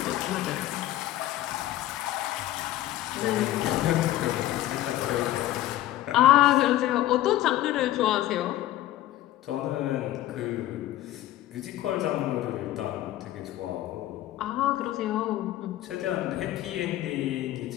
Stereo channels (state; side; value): quieter; right; 14.4 dB